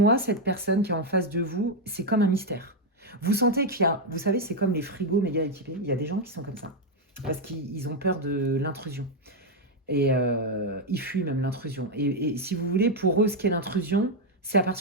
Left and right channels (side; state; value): both; normal; correlation 0.03